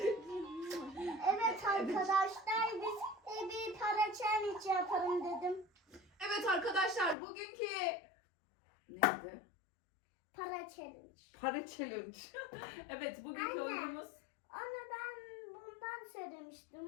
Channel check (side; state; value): right; drops out; at 7.2 s